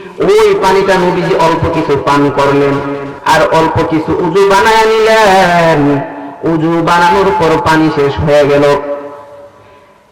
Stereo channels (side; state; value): both; identical; correlation 1.00